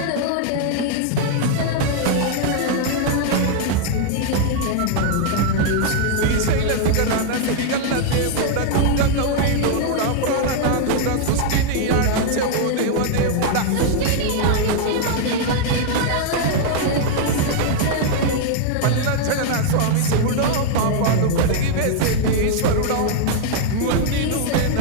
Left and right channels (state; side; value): different; both; correlation 0.00